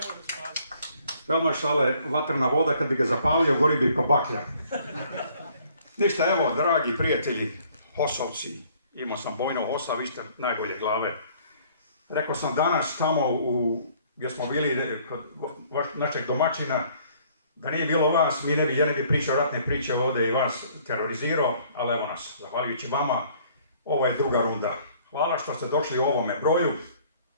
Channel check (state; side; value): inverted; both; correlation -0.59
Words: Veoma šale, vatrna voda, kad bi ga zapalio, gori bi ko baklja. Ništa, evo, dragi prijatelji, Hosovci, imao sam bojno Hosa, vi ste najbolje glave. Rekao sam danas tamo gdje smo bili kod našeg domaćina, da nije bilo vas, ja ne bi pričao ratne priče ovdje i vas terorizirao, ali evo nas, zahvaljujući vama, ovo je druga runda. Hvala što ste došli u ovome broju.